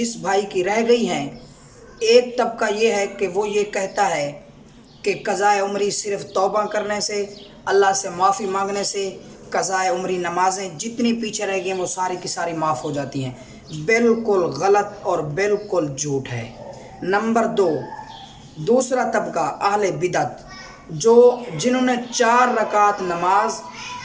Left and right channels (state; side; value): identical; both; correlation 1.00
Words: بھائی کی رہ گئی ہیں، ایک طبقہ یہ ہے کہ وہ یہ کہتا ہے کہ قضائے عمری صرف توبہ کرنے سے، اللہ سے معافی مانگنے سے قضائے عمری نمازیں جتنی پیچھے رہ گئی ہیں وہ ساری کی ساری معاف ہو جاتی ہیں۔ بالکل غلط اور بالکل جھوٹ ہے۔ نمبر دو، دوسرا طبقہ اہل بدعت، جنہوں نے 4 رکعت نماز